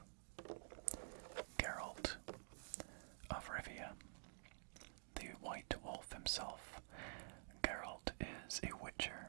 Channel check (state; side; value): silent; left; digital silence